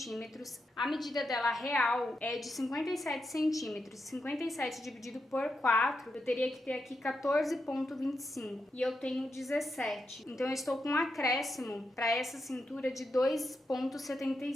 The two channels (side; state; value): both; normal; correlation 0.85